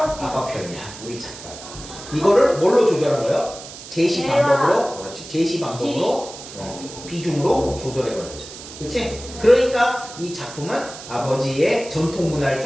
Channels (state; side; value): noise; right; hiss, 14 dB below the sound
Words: 편이야. 우리 작가가. 이거를 뭘로 조절한 거예요? 제시 방법으로. 그렇지. 제시 방법으로 비중으로 조절해버렸죠. 그렇지? 그러니까 이 작품은 아버지의 전통 문화를